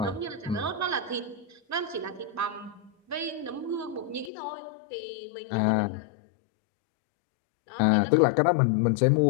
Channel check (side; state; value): right; drops out; at 4.3 s